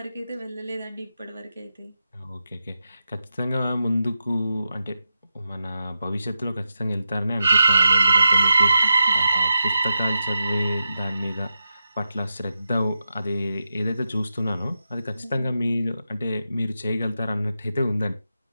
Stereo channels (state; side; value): inverted; both; correlation -0.90